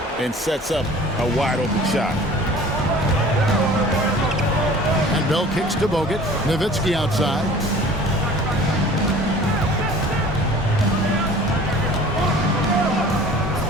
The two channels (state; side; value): normal; both; correlation 0.46